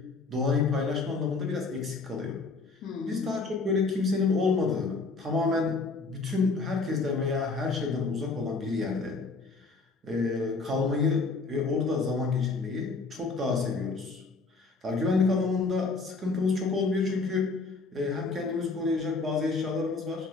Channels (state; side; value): quieter; right; 4.1 dB